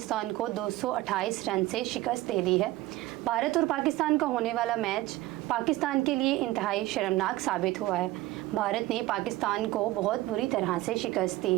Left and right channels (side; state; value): left; quieter; 17.6 dB